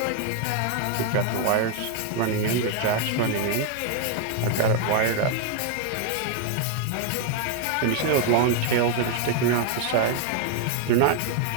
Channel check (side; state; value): both; different; correlation 0.00